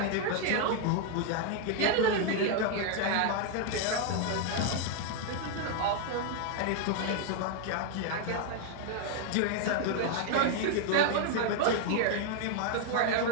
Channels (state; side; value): different; both; correlation 0.00